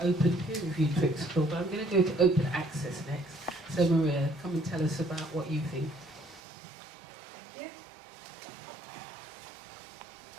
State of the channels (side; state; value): left; drops out; at 6.4 s